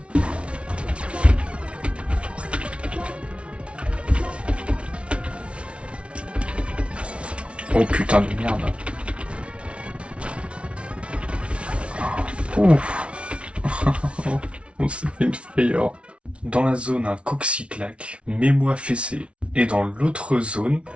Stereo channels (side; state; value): left; late; 0.060 ms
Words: Oh putain de merde. Ouf. On s'est fait une frayeur. Dans la zone, un Coxyclac, Mets-moi fessé. Et dans l'autre zone,